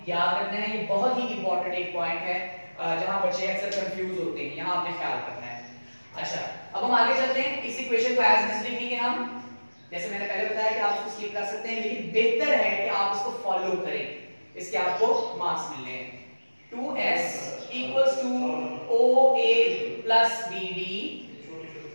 याद रखना है, ये बहुत ही इंपॉर्टेंट एक पॉइंट है जहां बच्चे अक्सर कंफ्यूज होते हैं, यहां आपने ख्याल रखना है। अच्छा अब हम आगे चलते हैं, इस इक्वेशन को एज इट इज लिखेंगे हम, जैसे मैंने पहले बताया कि आप इसको स्किप कर सकते हैं, लेकिन बेहतर है कि आप इसको फॉलो करें, इसके आपको मार्क्स मिलने हैं। 2s equals to OA plus BD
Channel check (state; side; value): inverted; both; correlation -1.00